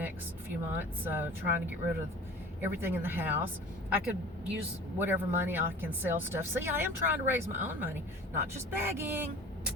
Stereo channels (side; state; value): both; normal; correlation 0.41